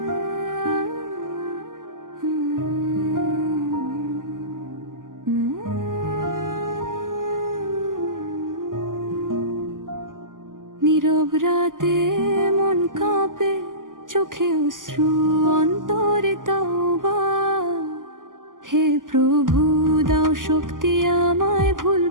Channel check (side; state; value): left; late; 0.89 ms